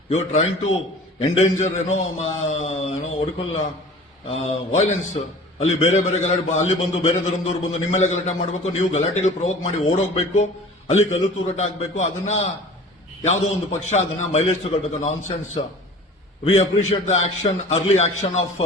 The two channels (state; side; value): normal; both; correlation 0.43